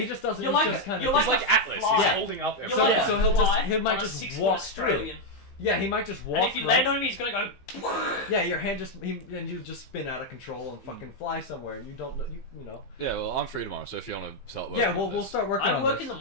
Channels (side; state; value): right; late; 15 ms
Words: just doesn't. You're He's like just kind you're of. like He's like a Atlas. fly. He's holding up You're everything. So, like yeah, a so he'll just- fly he might on a just 6-foot walk Australian. Yeah, he might just walk. And if you land on him, he's gonna go. Yeah, your hand and you just spin out of control and fucking fly somewhere. You don't know. You know. Yeah, well, I'm free tomorrow, so if you want to start working Yeah, on we'll this. start working I on work this. in the